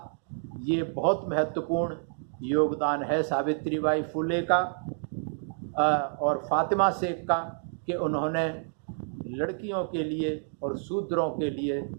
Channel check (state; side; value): silent; left; digital silence